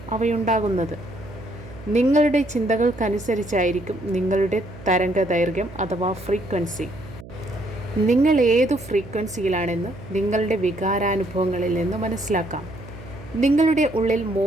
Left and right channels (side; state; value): right; noise; hum, 16 dB below the sound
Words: അവയുണ്ടാകുന്നത്. നിങ്ങളുടെ ചിന്തകൾക്കനുസരിച്ചായിരിക്കും നിങ്ങളുടെ തരംഗദൈർഘ്യം അഥവാ ഫ്രീക്വൻസി. നിങ്ങൾ ഏതു ഫ്രീക്വൻസിയിലാണെന്ന് നിങ്ങളുടെ വികാരാനുഭവങ്ങളിൽ നിന്ന് മനസ്സിലാക്കാം. നിങ്ങളുടെ ഉള്ളിൽ